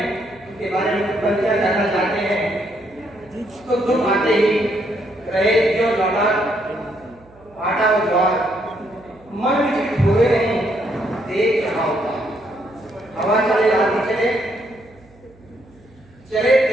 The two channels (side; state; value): right; noise; hum, 28 dB below the sound